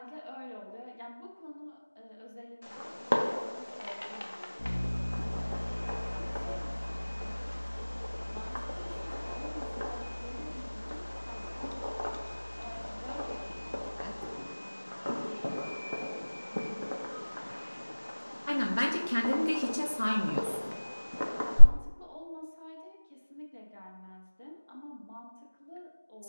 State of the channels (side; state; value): both; inverted; correlation -1.00